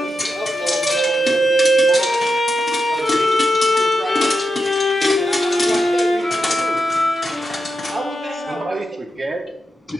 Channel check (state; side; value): normal; both; correlation 0.88